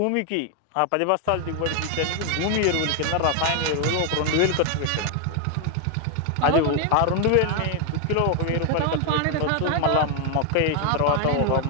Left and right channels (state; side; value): different; both; correlation 0.00